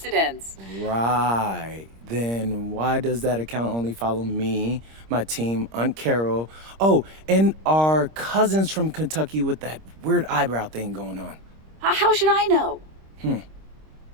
Right. Then why does that account only follow me, my team, Aunt Carol, oh, and our cousins from Kentucky with that weird eyebrow thing going on? How should I know?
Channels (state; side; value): late; left; 26 ms